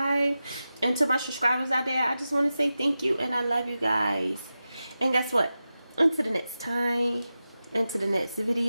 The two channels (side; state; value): both; inverted; correlation -0.93